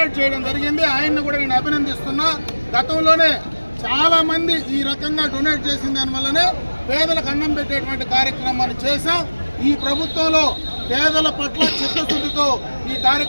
చేయడం జరిగింది. ఆయన్ని కూడా నేను అభినందిస్తున్నా. గతంలోనే చాలా మంది ఈ రకంగా డొనేట్ చేసిన దానివల్లనే పేదలకు అన్నం పెట్టేటువంటి కార్యక్రమాన్ని చేశాం. ఈ ప్రభుత్వంలో పేదల పట్ల చిత్తశుద్ధితో ఈ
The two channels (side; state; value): both; inverted; correlation -1.00